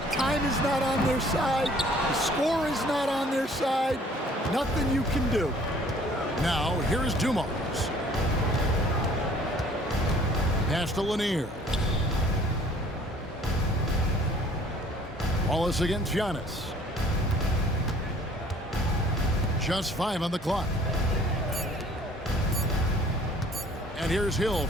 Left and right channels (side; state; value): both; normal; correlation 0.55